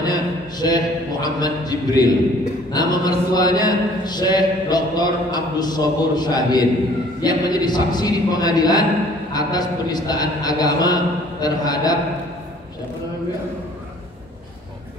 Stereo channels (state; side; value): normal; both; correlation 0.55